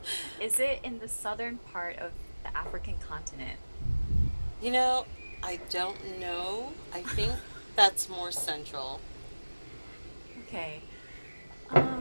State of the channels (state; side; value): inverted; both; correlation -1.00